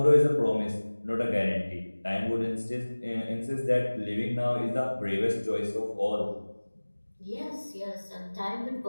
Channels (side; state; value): both; inverted; correlation -1.00